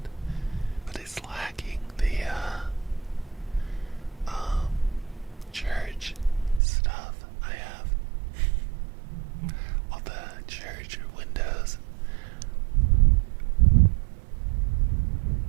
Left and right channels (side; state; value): left; drops out; at 6.6 s